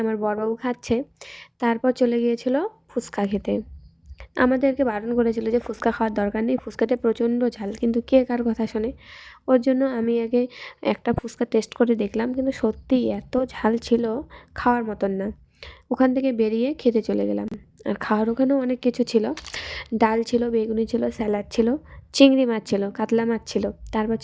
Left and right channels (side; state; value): both; identical; correlation 1.00